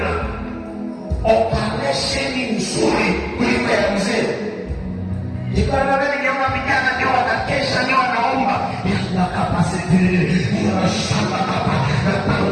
na operesheni nzuri kuliko ya mzee. Nikiona vijana ndio wanakesha, ndio wanaomba nakapasitiri nashamba hapa na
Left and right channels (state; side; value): identical; both; correlation 1.00